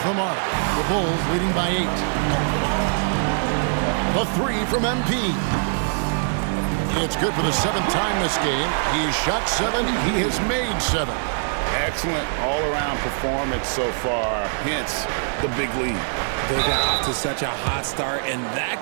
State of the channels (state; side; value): silent; left; digital silence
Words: the mark. The Bulls leading by 8. A 3 from MP. It's good for the 7th time this game. He has shot 7. He has made 7. Excellent all-around performance so far, hence the big lead. They got off to such a hot start, and that